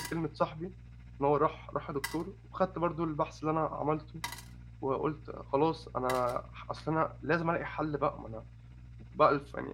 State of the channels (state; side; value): identical; both; correlation 1.00